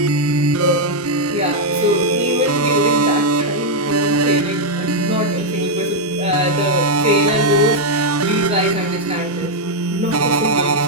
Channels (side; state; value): both; normal; correlation -0.01